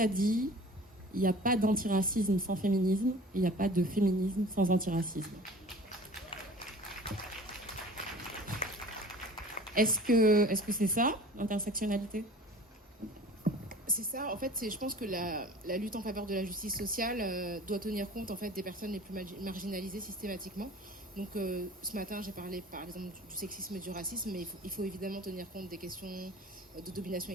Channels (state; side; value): normal; both; correlation 0.44